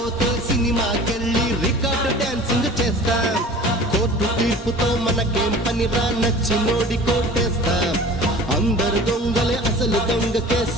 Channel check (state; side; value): normal; both; correlation 0.42